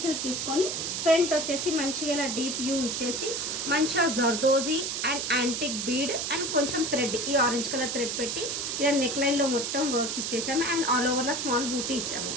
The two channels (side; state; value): right; noise; hiss, 2 dB below the sound